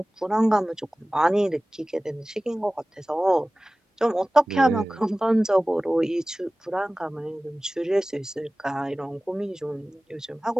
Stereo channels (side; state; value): both; normal; correlation 0.97